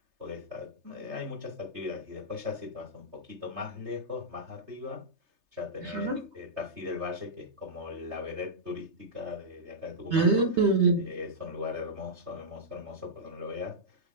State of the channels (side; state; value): left; late; 3.3 ms